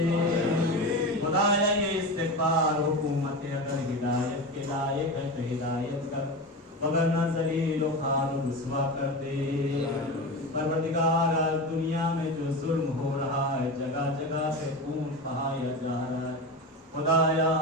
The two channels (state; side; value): normal; both; correlation 0.24